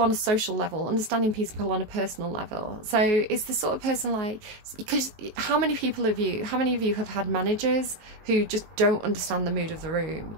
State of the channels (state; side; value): late; left; 18 ms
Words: on a social level, understanding people on a personal level. So it's the sort of person like, because how many of you have had managers who just don't understand the mood of the room?